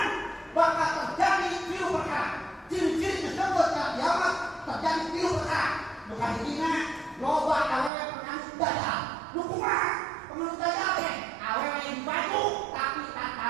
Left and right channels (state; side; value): drops out; left; at 7.9 s